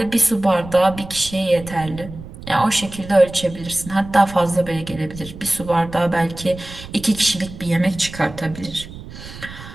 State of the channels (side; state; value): right; noise; rumble, 14 dB below the sound